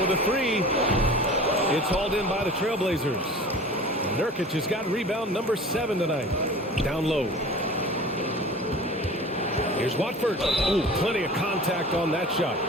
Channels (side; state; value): both; normal; correlation 0.40